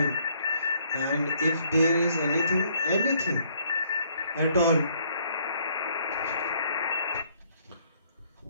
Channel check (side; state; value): both; inverted; correlation -0.66